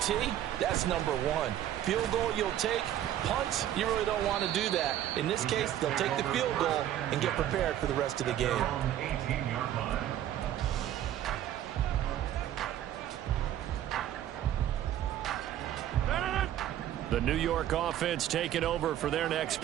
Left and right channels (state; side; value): quieter; left; 11.8 dB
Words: that's number 1. Field goal you'll take. Punts, you really don't want to do that. In this case, they'll take the field goal and get prepared for the rest of the game. The New York offense taking over for their next